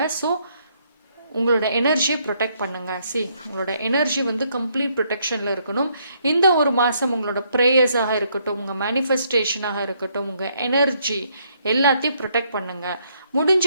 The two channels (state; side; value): inverted; both; correlation -0.71